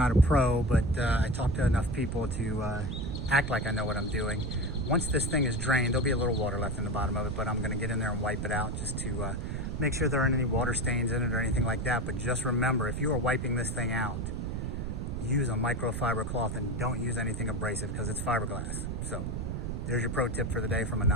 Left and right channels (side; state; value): right; noise; rumble, 3 dB below the sound